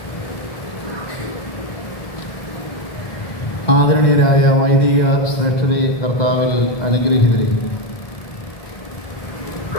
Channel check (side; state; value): right; late; 1.9 ms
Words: വൈദിക ശ്രേഷ്ഠരെ, കർത്താവിൽ അനുഗ്രഹീതരെ,